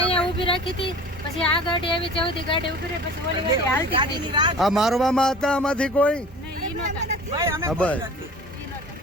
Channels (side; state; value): both; normal; correlation 0.42